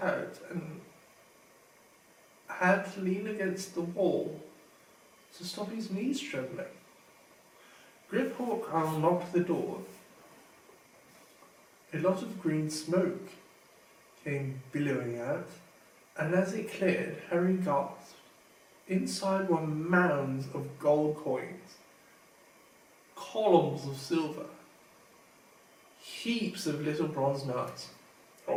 out and had to lean against the wall to stop his knees trembling. Grip-Hawk unlocked the door. A lot of green smoke came billowing out, and as it cleared, Harry gasped. Inside were mounds of gold coins, columns of silver, heaps of little bronze nuts.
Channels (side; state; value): both; identical; correlation 1.00